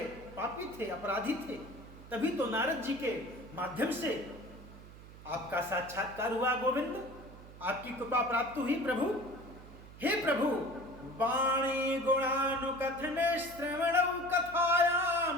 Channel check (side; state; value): right; noise; hum, 17 dB below the sound